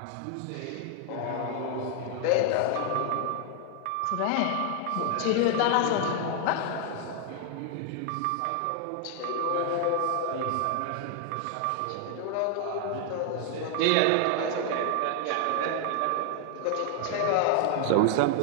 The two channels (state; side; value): different; both; correlation 0.00